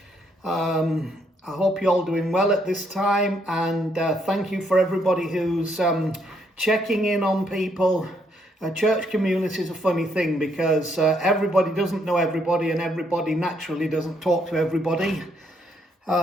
I hope you're all doing well at this time, and thank you for everybody who's checking in on people. Church community is a funny thing because everybody doesn't know everybody and everybody naturally doesn't talk to everybody.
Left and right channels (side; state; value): both; normal; correlation 0.72